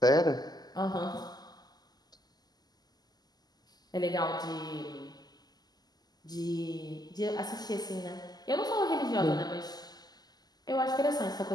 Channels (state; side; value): late; right; 0.20 ms